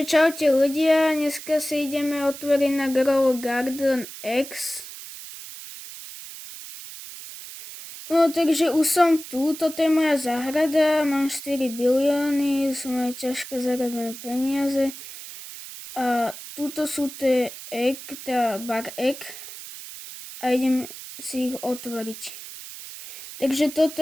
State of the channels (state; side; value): noise; right; hiss, 13 dB below the sound